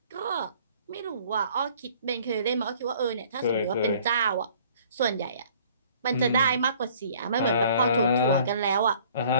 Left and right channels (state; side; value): inverted; both; correlation -0.55